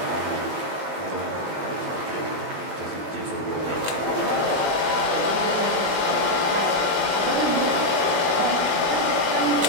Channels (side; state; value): left; late; 20 ms